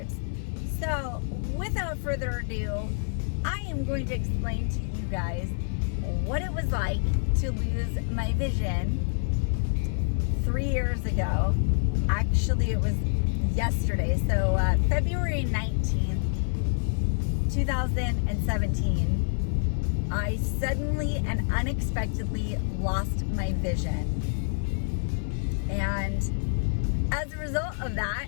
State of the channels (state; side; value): silent; right; digital silence